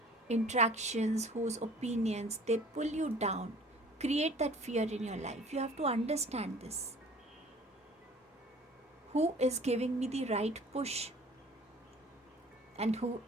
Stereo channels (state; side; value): normal; both; correlation 0.49